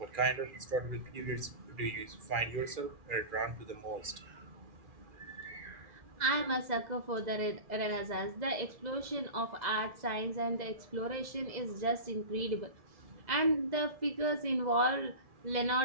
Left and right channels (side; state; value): left; late; 2.0 ms